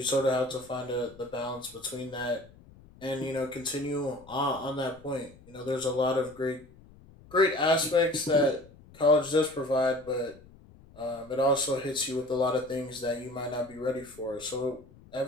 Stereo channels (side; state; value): left; noise; rumble, 23 dB below the sound